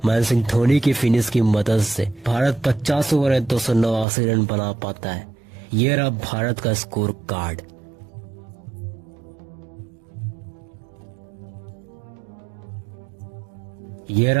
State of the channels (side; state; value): left; drops out; at 4.0 s